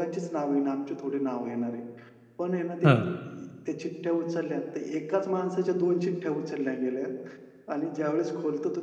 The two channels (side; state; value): both; identical; correlation 1.00